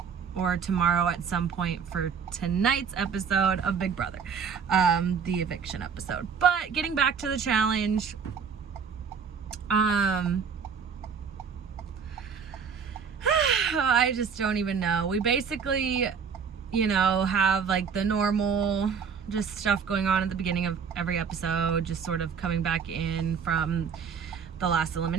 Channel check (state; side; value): quieter; left; 6.5 dB